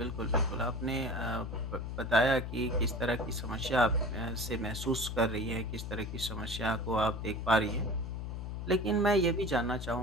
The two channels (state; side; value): noise; left; hum, 5 dB below the sound